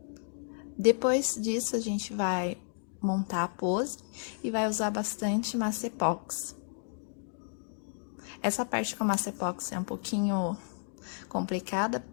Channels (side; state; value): right; silent; digital silence